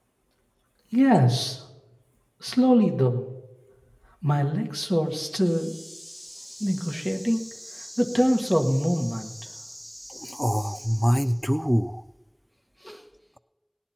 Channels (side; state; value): both; identical; correlation 1.00